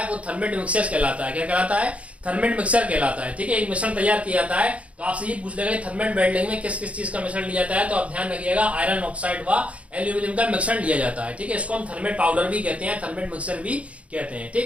वो थर्मेट मिक्सचर कहलाता है। क्या कहलाता है, थर्मेट मिक्सचर कहलाता है, ठीक है। एक मिश्रण तैयार किया जाता है। तो आपसे ये पूछ लेगा थर्मेट वेल्डिंग में किस किस चीज का मिश्रण लिया जाता है, तो आप ध्यान रखिएगा आयरन ऑक्साइड व एल्यूमिनियम का मिश्रण लिया जाता है, ठीक है। इसको हम थर्मेट पाउडर भी कहते हैं, थर्मेट मिक्सचर भी कहते हैं,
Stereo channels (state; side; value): late; left; 0.063 ms